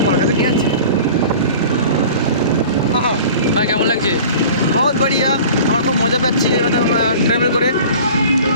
কলকাতা নিয়ে যাচ্ছে। ভাই কেমন লাগছে? বহুত বড়িয়া, আমরা খুব মজা পাচ্ছি ট্রাভেল করে।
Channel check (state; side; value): inverted; both; correlation -0.42